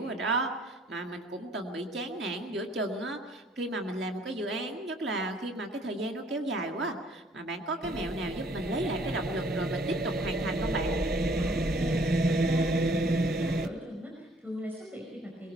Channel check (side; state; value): both; normal; correlation 0.59